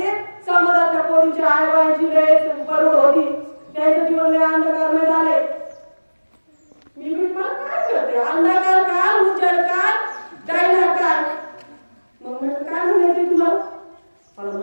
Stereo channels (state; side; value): inverted; both; correlation -1.00